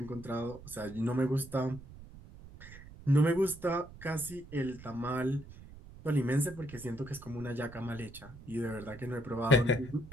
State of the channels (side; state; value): right; noise; rumble, 17 dB below the sound